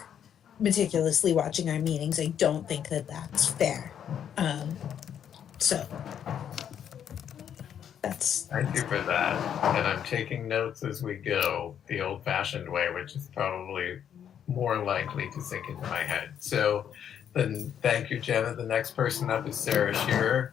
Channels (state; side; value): quieter; right; 9.0 dB